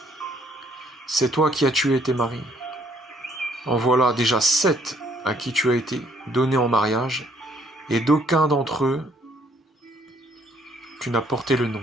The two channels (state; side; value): normal; both; correlation 0.66